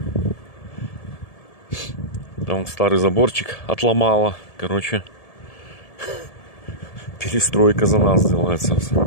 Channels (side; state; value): right; late; 1.7 ms